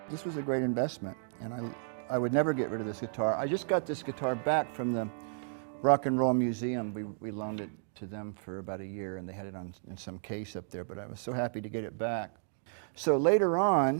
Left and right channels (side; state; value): left; silent; digital silence